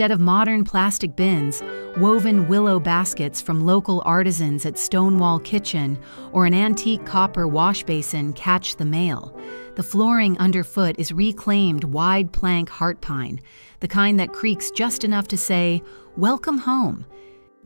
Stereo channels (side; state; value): both; inverted; correlation -1.00